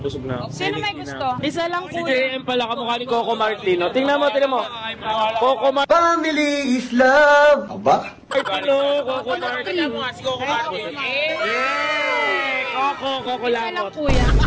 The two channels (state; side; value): identical; both; correlation 1.00